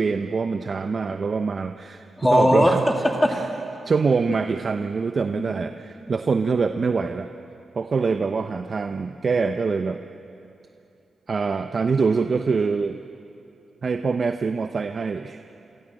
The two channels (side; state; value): left; quieter; 3.0 dB